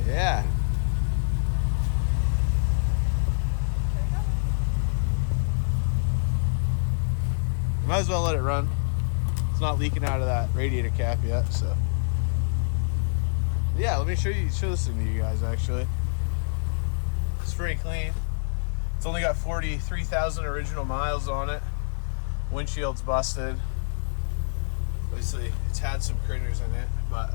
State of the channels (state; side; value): silent; right; digital silence